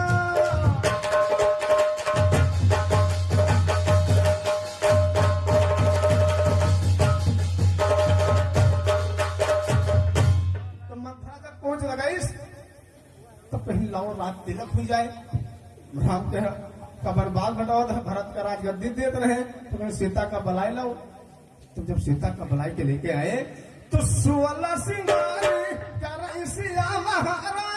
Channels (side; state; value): both; identical; correlation 1.00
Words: लाओ रात तिलक हो जाए, राम का बर्बाद घटाओ, भरत का राजगद्दी देते रहे, तो मैं सीता का बलाई लाओ। तो जब सीता का बलाई के लेके आए तो 16 सिंगारी कर सिया